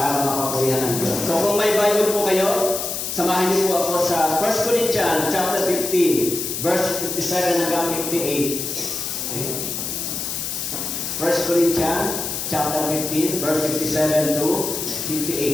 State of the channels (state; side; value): noise; left; hiss, 4 dB below the sound